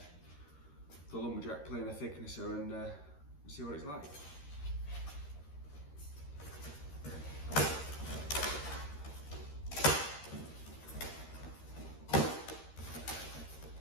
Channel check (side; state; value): right; late; 13 ms